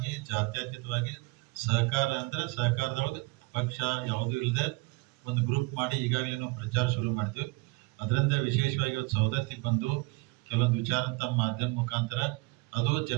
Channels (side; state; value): left; quieter; 25.1 dB